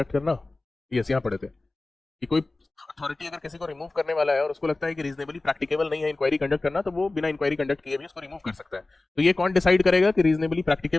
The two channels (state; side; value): quieter; right; 3.2 dB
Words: करना, यस यहाँ पढ़े थे कि कोई अथॉरिटी अगर किसी को रिमूव करने वाला है और उसको लगता है कि रीजनेबली प्रैक्टिकेबल नहीं है इंक्वायरी कंडक्ट करना, तो वो बिना इंक्वायरी कंडक्ट किए भी उसको रिमूव कर सकता है। तो ये कौन डिसाइड करेगा कि रीजनेबली